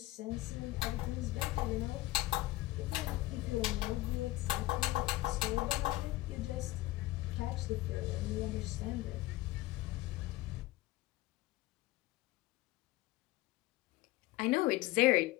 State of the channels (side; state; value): right; quieter; 18.1 dB